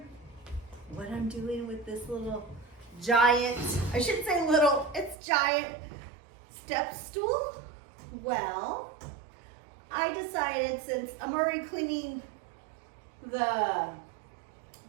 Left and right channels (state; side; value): drops out; left; at 5.2 s